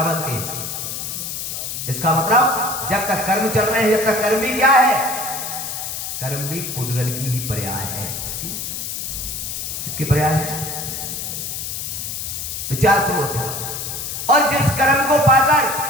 बनते हैं। इसका मतलब जब तक कर्म चल रहे हैं, जब तक कर्म भी क्या है? कर्म भी पुद्गल की ही पर्याय है। इसकी पर्याय है। विचार पूर्वक। और जिस कर्म को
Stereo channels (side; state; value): left; noise; hiss, 5 dB below the sound